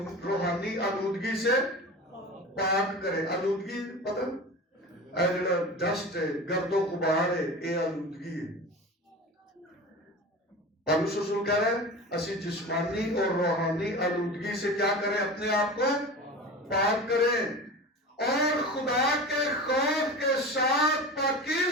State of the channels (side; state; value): both; normal; correlation 0.32